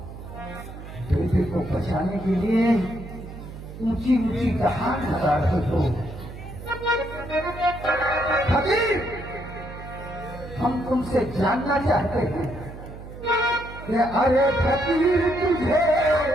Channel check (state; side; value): noise; right; hum, 13 dB below the sound